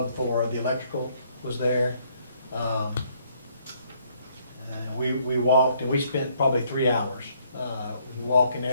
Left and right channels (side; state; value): both; inverted; correlation -0.68